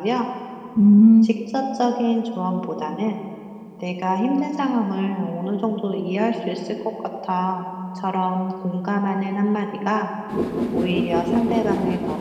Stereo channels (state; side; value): identical; both; correlation 1.00